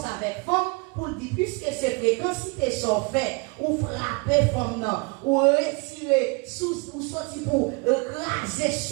avec femme, pour dire, puisque ces fréquences sont faites, ou frapper femme, ou retirer, ou sortir pour raser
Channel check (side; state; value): left; quieter; 30.1 dB